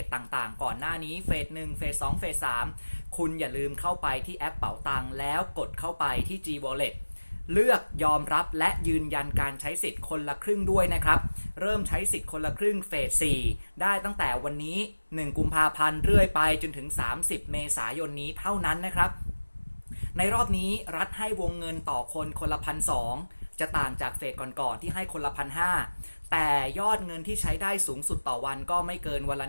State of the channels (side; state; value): both; inverted; correlation -1.00